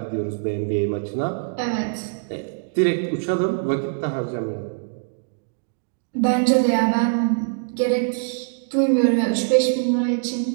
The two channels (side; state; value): left; silent; digital silence